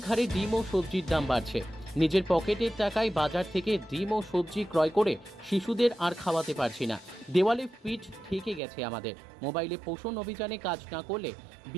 হারে ডিম ও সবজির দাম বাড়ছে। নিজের পকেটের টাকায় বাজার থেকে ডিম ও সবজি ক্রয় করে শিশুদের আর খাওয়াতে পারছি না। দেওয়ালে পিঠ ঠেকে গেছে আমাদের। মোবাইলে পোষণ অভিযানে কাজ না করলে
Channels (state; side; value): drops out; left; at 8.6 s